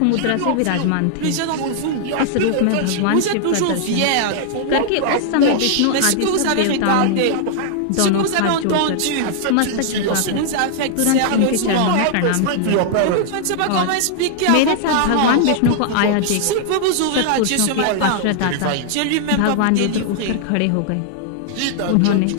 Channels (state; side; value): different; both; correlation -0.01